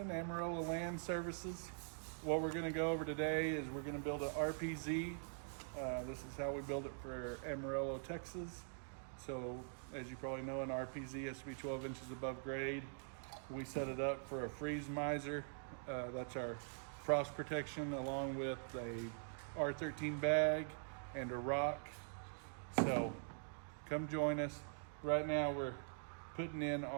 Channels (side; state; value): left; silent; digital silence